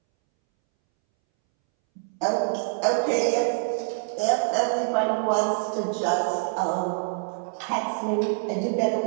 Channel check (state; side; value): silent; left; 61 dB below the other